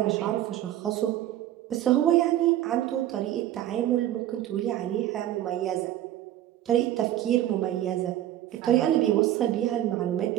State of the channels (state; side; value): quieter; left; 13.0 dB